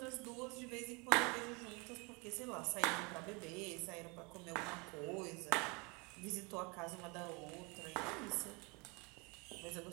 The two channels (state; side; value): quieter; left; 29.3 dB